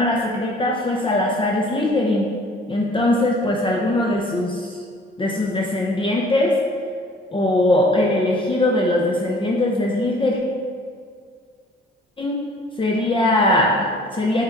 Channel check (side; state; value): both; normal; correlation 0.52